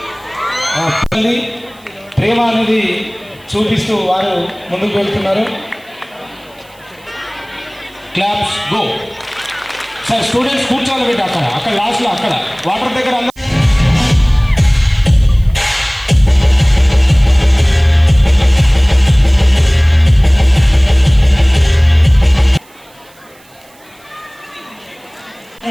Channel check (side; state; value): right; noise; hiss, 29 dB below the sound